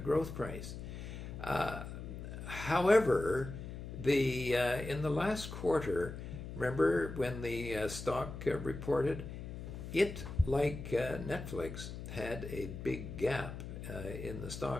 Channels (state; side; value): noise; left; hum, 9 dB below the sound